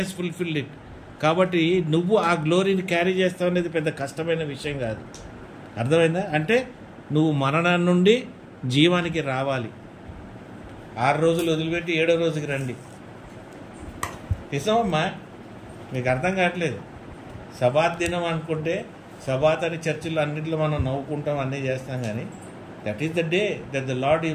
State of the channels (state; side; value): identical; both; correlation 1.00